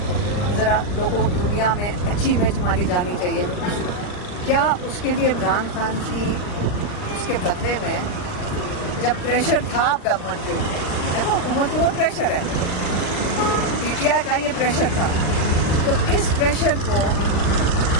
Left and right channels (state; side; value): late; right; 39 ms